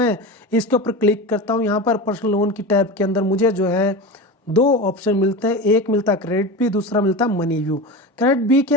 इसके ऊपर क्लिक करता हूँ यहाँ पर पर्सनल लोन की टैब के अंदर मुझे जो है 2 ऑप्शन मिलते हैं। एक मिलता है क्रेडिट बी, दूसरा मिलता है मनी व्यू। क्रेडिट बी के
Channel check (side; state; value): both; normal; correlation 0.26